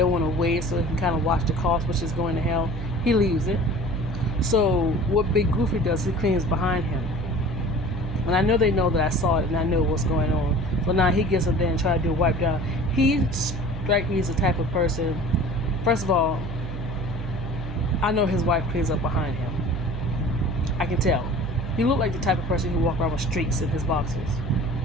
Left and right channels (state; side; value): noise; right; hum, 6 dB below the sound